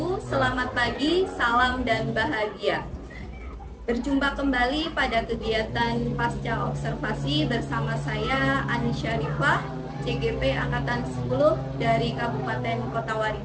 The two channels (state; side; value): identical; both; correlation 1.00